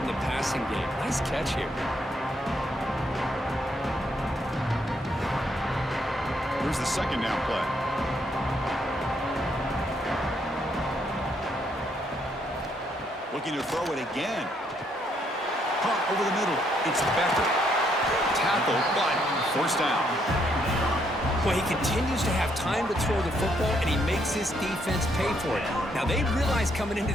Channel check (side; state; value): both; normal; correlation 0.73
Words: the passing game. Nice catch here. Here's the 2nd down play. Looking to throw it again. Caught over the middle. It's Becker. Tackled, but 1st down. Well, he continues to have time to throw the football, and he makes his defense pay for it. Now, they realized coming into